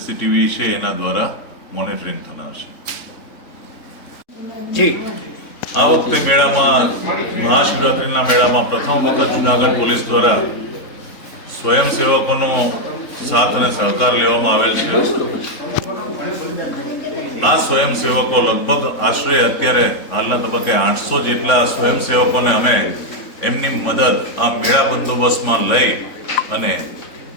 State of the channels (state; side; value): late; right; 3.6 ms